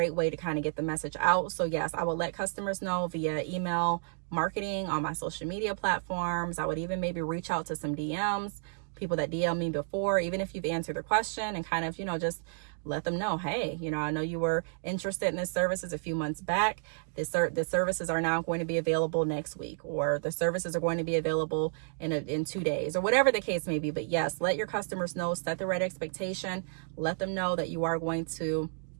way to kind of get the message out. So yes, I would let customers know via email marketing on my social media platforms. I would even maybe reach out to some DMs, people that DM me before, even if you've answered their question, and kind of, just let them know, hey, I know you were interested in this services a few months back. The services are now going to be available next week, or the services are going to be available in 2 days, or whatever the case may be. But yes, let your customers know, set the right expectation, let them know that you are going to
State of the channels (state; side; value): silent; left; digital silence